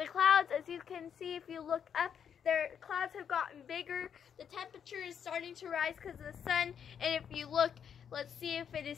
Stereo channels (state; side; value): quieter; right; 7.9 dB